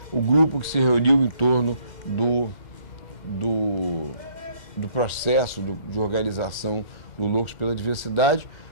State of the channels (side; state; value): right; late; 2.1 ms